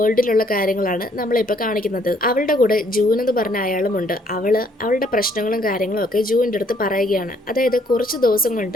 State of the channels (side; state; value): both; normal; correlation 0.66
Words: കാര്യങ്ങളാണ് നമ്മളിപ്പോൾ കാണിക്കുന്നത്. അവളുടെ കൂടെ ജൂൻ എന്ന് പറഞ്ഞ അയാളുമുണ്ട്. അവളുടെ പ്രശ്നങ്ങളും കാര്യങ്ങളും ഒക്കെ ജൂനിന്റെ അടുത്ത് പറയുകയാണ്. അതായത് കുറച്ച് ദിവസം